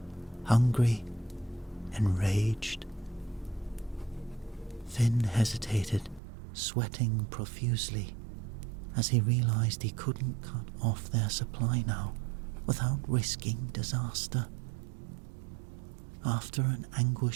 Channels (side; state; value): left; drops out; at 6.2 s